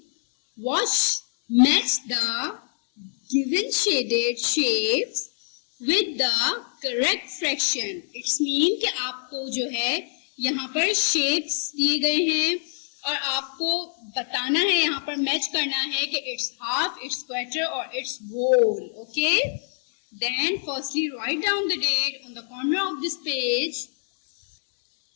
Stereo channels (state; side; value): silent; right; 62 dB below the other